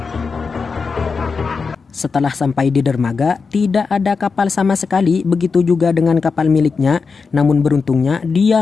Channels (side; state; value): right; quieter; 5.0 dB